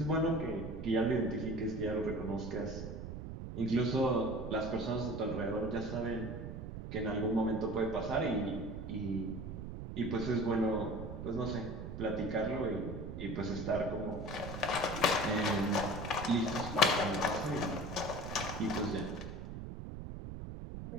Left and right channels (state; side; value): noise; right; rumble, 8 dB below the sound